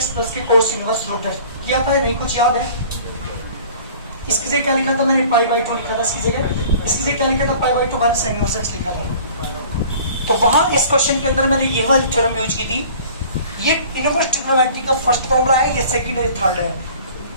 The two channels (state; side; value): inverted; both; correlation -0.47